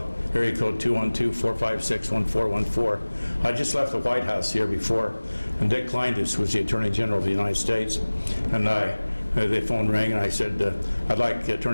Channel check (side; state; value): both; inverted; correlation -1.00